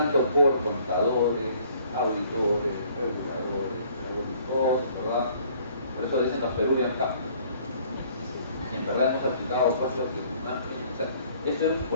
por contadores, auditores, reguladores, todos, ¿verdad? Por eso dicen los Peruvian Cup. Y en verdad hemos aplicado cosas que o sea, esto es un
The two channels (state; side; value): inverted; both; correlation -0.58